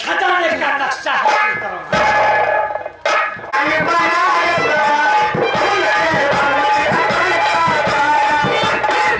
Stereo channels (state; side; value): identical; both; correlation 1.00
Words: खजाने का नक्शा हासिल करूंगा।